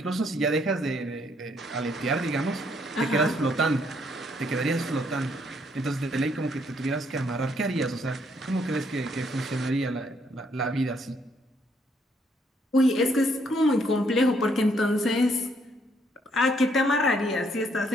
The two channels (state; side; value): normal; both; correlation 0.70